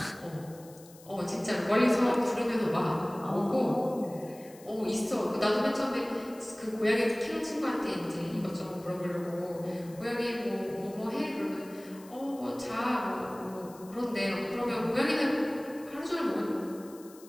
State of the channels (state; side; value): noise; left; hiss, 22 dB below the sound